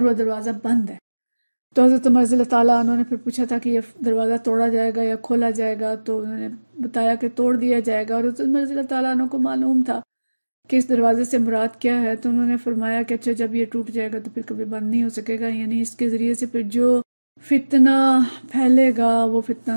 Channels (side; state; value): both; inverted; correlation -1.00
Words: وہ دروازہ بند ہے۔ تو حضرت عمر رضی اللہ تعالیٰ عنہ نے پھر پوچھا تھا کہ یہ دروازہ توڑا جائے گا یا کھولا جائے گا، تو انہوں نے بتایا کہ توڑ دیا جائے گا، اور حضرت عمر رضی اللہ تعالیٰ عنہ کو معلوم تھا کہ اس دروازے سے مراد کیا ہے، تو انہوں نے فرمایا کہ اچھا جب یہ ٹوٹ جائے گا تو پھر کبھی بند نہیں ہو سکے گا، یعنی اس کے ذریعے سے پھر جو فتنہ پھیلے گا وہ